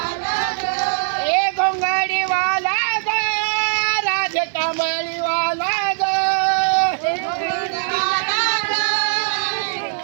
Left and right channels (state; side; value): silent; left; 66 dB below the other